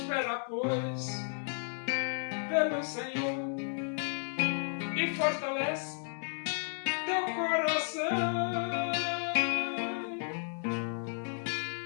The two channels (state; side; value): silent; right; 56 dB below the other